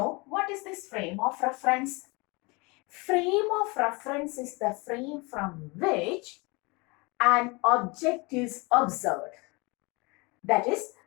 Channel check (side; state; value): right; quieter; 27.1 dB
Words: what is this frame of reference? Frame of reference is the frame from which an object is observed. That is,